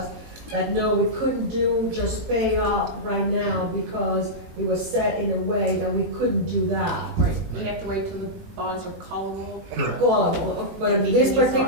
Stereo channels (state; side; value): late; left; 18 ms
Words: that no, we couldn't just pay off right now because it was set in a way that we couldn't do that. right, we have to wait till the bonds are callable. Callable, but in this